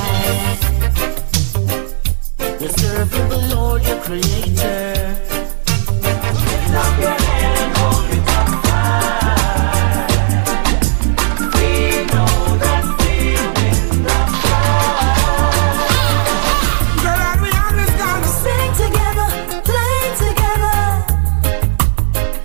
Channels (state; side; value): silent; left; digital silence